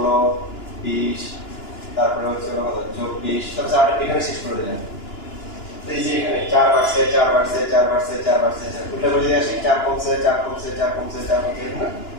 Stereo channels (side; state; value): right; late; 2.9 ms